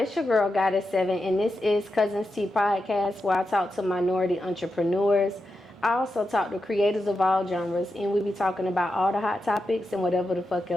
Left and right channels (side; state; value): both; normal; correlation 0.88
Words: your girl, Goddess7, and this is Cuzn Tea Podcast, where I talk to minority entrepreneurs. I also talk to creators of all genres, and we be talking about all the hot topics and whatever the fuck